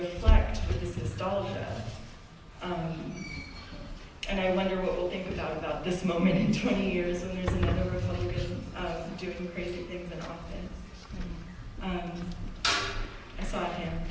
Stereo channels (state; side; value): identical; both; correlation 1.00